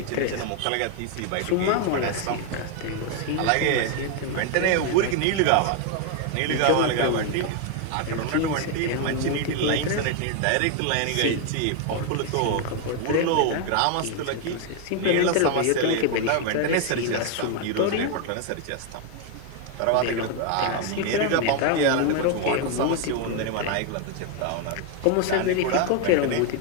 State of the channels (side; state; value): both; different; correlation 0.01